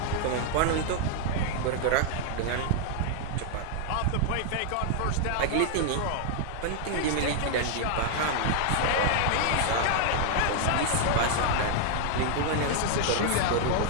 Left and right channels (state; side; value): different; both; correlation 0.00